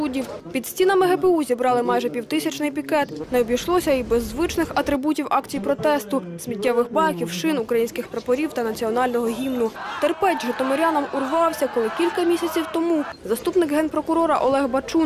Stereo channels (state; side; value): identical; both; correlation 1.00